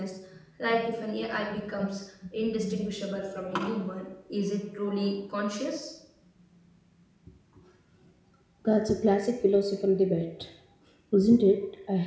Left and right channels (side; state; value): both; identical; correlation 1.00